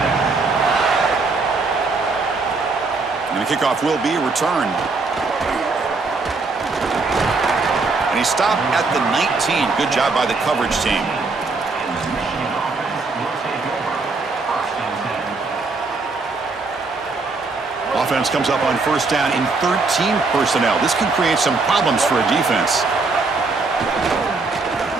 And the kickoff will be returned. And he stopped at the 19. Good job by the coverage team. Offense comes up on first down in 13 personnel. This can create some problems for a defense.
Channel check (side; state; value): left; quieter; 3.9 dB